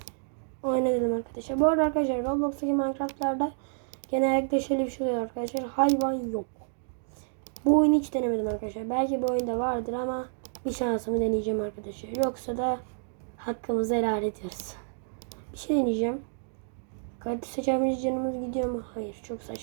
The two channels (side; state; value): left; silent; digital silence